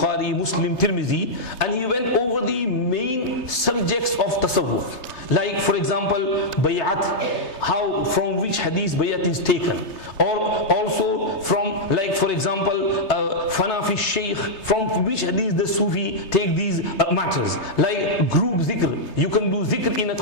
Muslim, Tirmizi, and he went over the main subjects of tasawwuf. Like for example, bay'at, how, from which hadith bay'at is taken. Or also from, like for example, fana fi shaykh, from which hadith the Sufi take these matters. Like group zikr, you can do zikr in a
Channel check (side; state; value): right; late; 3.3 ms